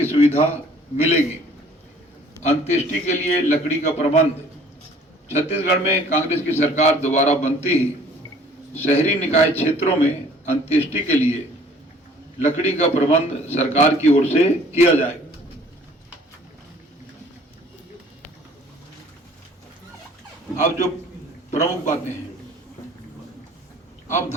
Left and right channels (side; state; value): both; normal; correlation 0.54